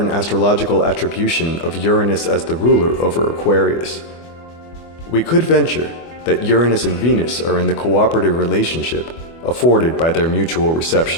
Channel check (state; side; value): late; right; 24 ms